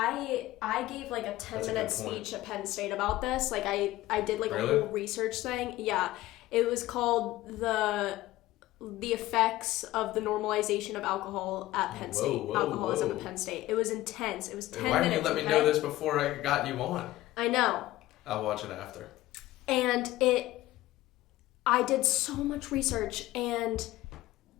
gave like a 10-minute speech at Penn State about this. Like I did like a whole research thing. Yeah. It was called the effects of the normalization of alcohol at Penn State. Alcoholism at Penn State. It was intense. It was 10 minutes. Why didn't you let me know this before I got you on? I know. I'll watch it after. And I did so much research, and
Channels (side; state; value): right; quieter; 16.6 dB